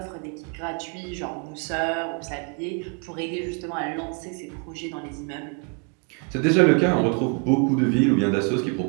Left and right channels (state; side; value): quieter; left; 36.4 dB